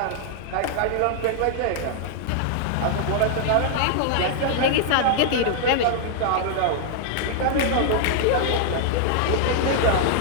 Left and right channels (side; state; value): both; different; correlation 0.00